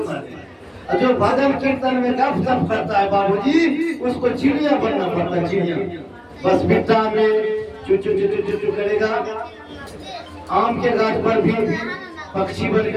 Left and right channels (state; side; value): identical; both; correlation 1.00